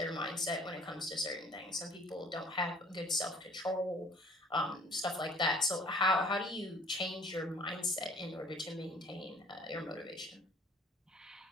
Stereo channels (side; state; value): both; normal; correlation 0.53